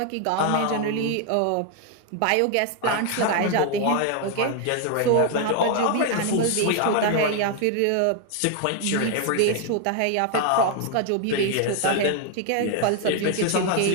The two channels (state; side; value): different; both; correlation 0.01